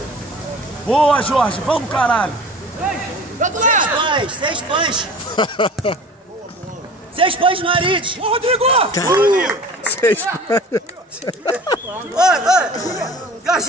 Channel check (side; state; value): both; normal; correlation 0.41